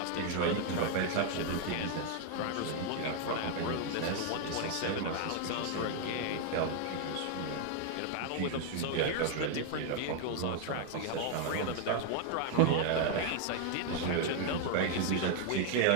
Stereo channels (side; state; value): both; different; correlation 0.00